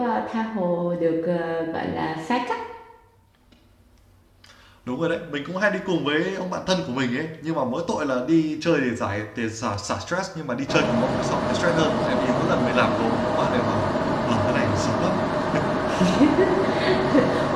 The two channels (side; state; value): both; identical; correlation 1.00